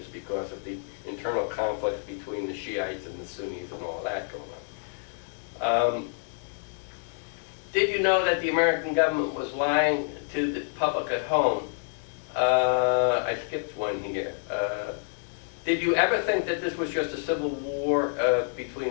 because of the internal conflict between the Shiites and the Sunnis and all that going on. Did you know that the American government was lying to the public at home? I skipped one here. Did you ever think that this was just a civil war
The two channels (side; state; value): right; silent; digital silence